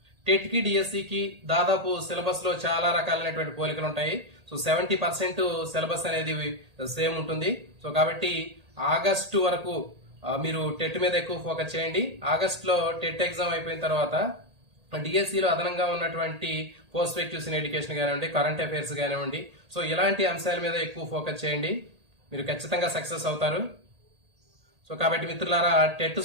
టెట్ కి డిఎస్సికి దాదాపు సిలబస్ లో చాలా రకాలైనటువంటి పోలికలు ఉంటాయి. సో 70% సిలబస్ అనేది సేమ్ ఉంటుంది. సో కాబట్టి ఆగస్టు వరకు మీరు టెట్ మీద ఎక్కువ ఫోకస్ చేయండి. ఆగస్ట్ లో టెట్ ఎగ్జామ్ అయిపోయిన తర్వాత డిఎస్సిలో అదనంగా ఉన్నటువంటి పర్స్పెక్టివ్స్ ఇన్ ఎడ్యుకేషన్ కానివ్వండి, కరెంట్ అఫైర్స్ కానివ్వండి, సో ఇలాంటి అంశాల మీద ఎక్కువ ఫోకస్ చేయండి. మీరు ఖచ్చితంగా సక్సెస్ అవుతారు. సో కాబట్టి మిత్రులారా, టెట్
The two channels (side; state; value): left; late; 1.8 ms